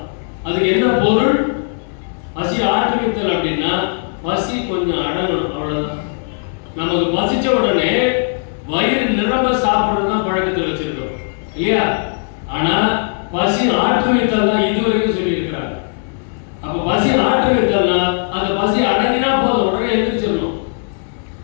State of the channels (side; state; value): right; silent; 65 dB below the other